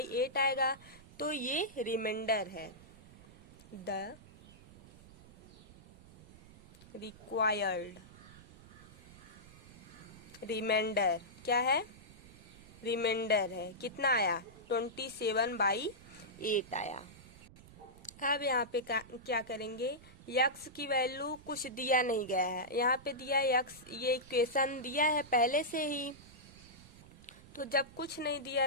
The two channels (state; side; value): noise; right; rumble, 21 dB below the sound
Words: आएगा, तो ये रिमाइंडर है। द रिक्वायर्ड रिमाइंडर क्या है? रिमाइंडर है। कितना आया? 27/8 आया। अब यहाँ पे क्या करेंगे? यक्स की वैल्यू कुछ दिया नहीं गया है, यहाँ पे दिया यक्स, ये इक्वेशन दिया है पहले से ही। तो जब कुछ नहीं दिया